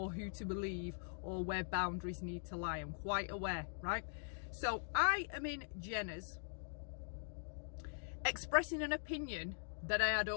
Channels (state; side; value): silent; right; digital silence